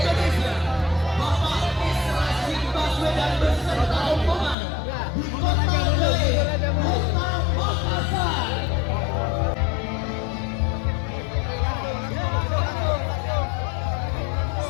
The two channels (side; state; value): right; drops out; at 4.5 s